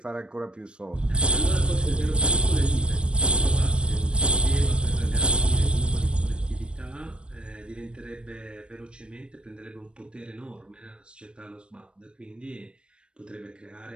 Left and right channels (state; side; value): late; left; 0.055 ms